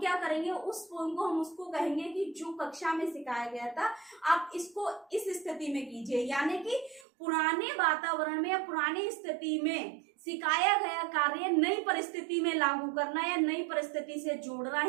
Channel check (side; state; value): left; drops out; at 7.1 s